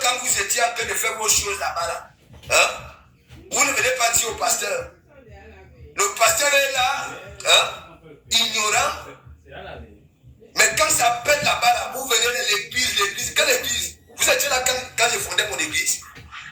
vous étiez en train de faire vos choses là-bas, là, hein, vous ne venez pas dire au pasteur. Le pasteur est là, hein, ignorant. Mais quand ça pète là-bas, là, vous venez de l'église. Quelle église? Vous étiez là quand je fondais mon église.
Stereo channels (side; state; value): both; identical; correlation 1.00